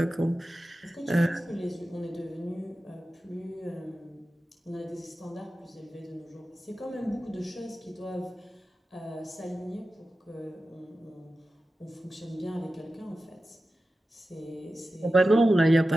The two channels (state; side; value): normal; both; correlation 0.94